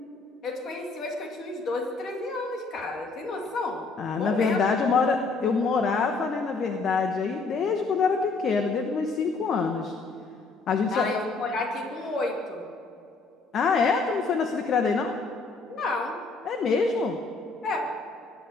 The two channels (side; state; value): right; quieter; 4.0 dB